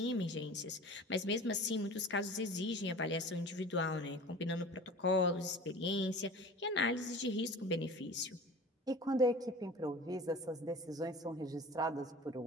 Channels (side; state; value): both; normal; correlation 0.39